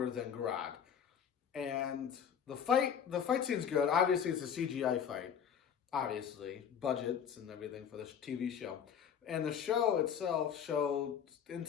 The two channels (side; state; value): right; quieter; 8.0 dB